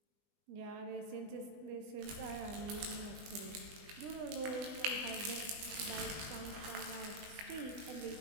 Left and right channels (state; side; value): late; left; 20 ms